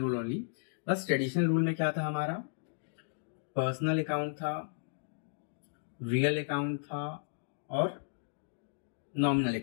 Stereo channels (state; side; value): silent; right; digital silence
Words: only. बस ट्रेडिशनल रूल में क्या था हमारा? पर्सनल अकाउंट था, रियल अकाउंट था और नॉमिनल